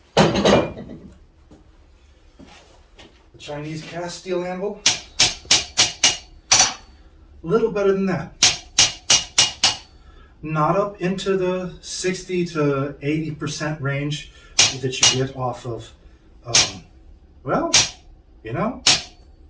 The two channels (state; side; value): identical; both; correlation 1.00